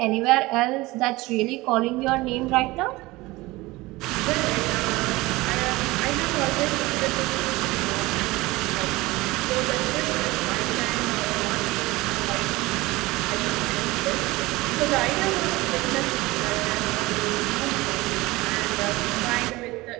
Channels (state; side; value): quieter; left; 20.8 dB